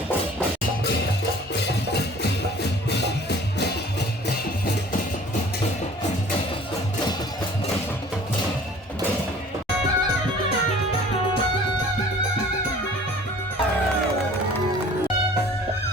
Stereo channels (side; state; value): both; normal; correlation 0.49